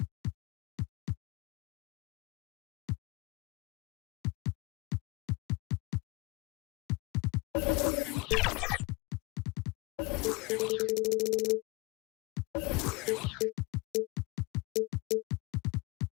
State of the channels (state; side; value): quieter; right; 25.6 dB